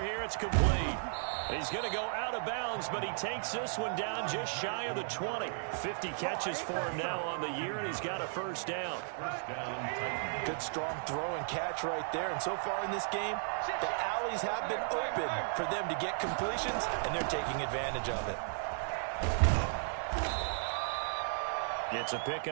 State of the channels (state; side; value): silent; left; digital silence